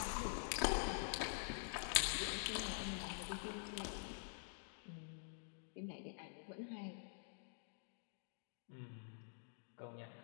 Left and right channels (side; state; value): right; silent; digital silence